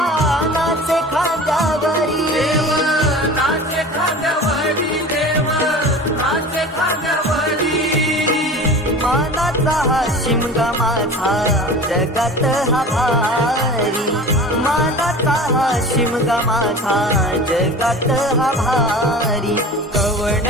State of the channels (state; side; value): normal; both; correlation 0.37